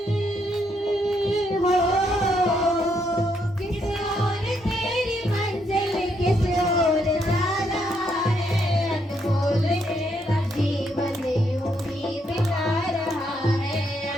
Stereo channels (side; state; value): both; normal; correlation 0.75